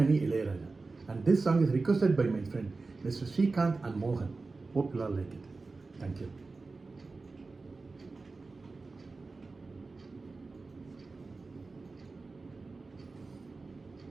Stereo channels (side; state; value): left; quieter; 3.8 dB